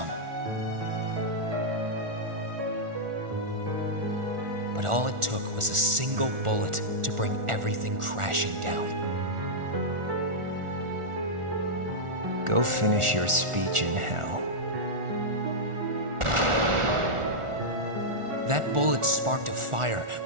But all it took was a single bullet to bring everything crashing down. Go finish your speech in hell. That bullet sparked a fire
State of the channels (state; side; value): late; left; 1.4 ms